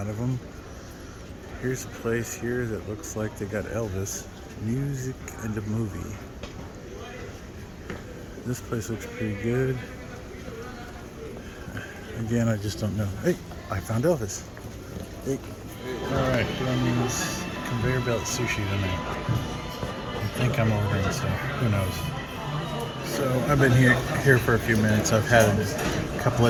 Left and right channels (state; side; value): identical; both; correlation 1.00